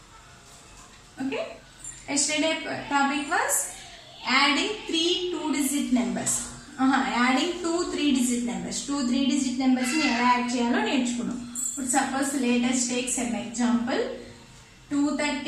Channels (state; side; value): identical; both; correlation 1.00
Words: Okay. Yesterday topic was adding three two-digit numbers. Adding two three-digit numbers. Two three-digit numbers ni ela add cheyalo nerchukunnam. Suppose let us take some example.